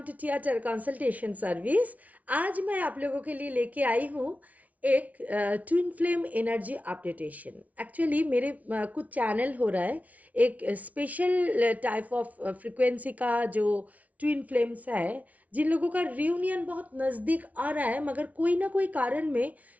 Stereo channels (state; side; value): late; left; 0.070 ms